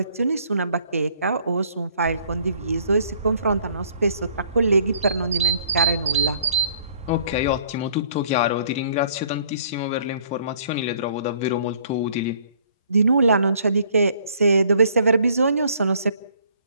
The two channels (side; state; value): both; inverted; correlation -0.60